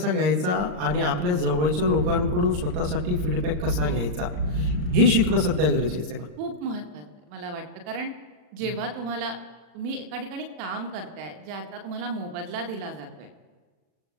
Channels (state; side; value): late; left; 39 ms